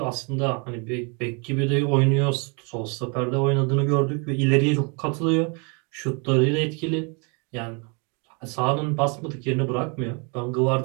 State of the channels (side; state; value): left; quieter; 34.2 dB